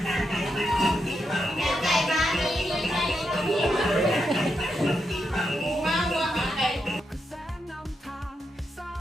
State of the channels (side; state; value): both; normal; correlation 0.84